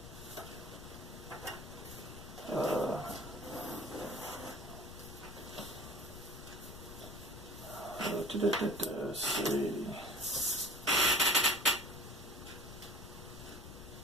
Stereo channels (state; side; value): noise; left; rumble, 14 dB below the sound